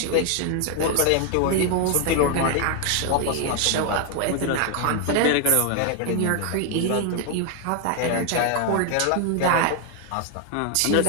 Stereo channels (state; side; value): different; both; correlation 0.00